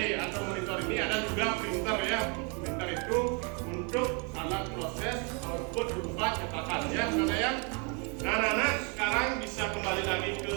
atau monitor ini ada juga printer, ya. Printer itu untuk alat proses output berupa cetakan, ya. Karena ya, nah anak-anak sekarang bisa kembali lagi ke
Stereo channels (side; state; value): left; quieter; 34.7 dB